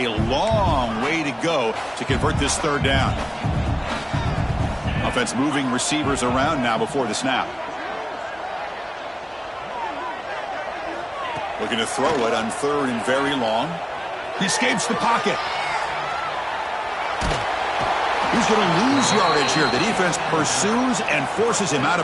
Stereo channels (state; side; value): identical; both; correlation 1.00